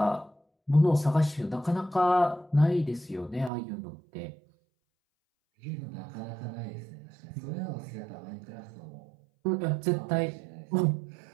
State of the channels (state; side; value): drops out; left; at 3.5 s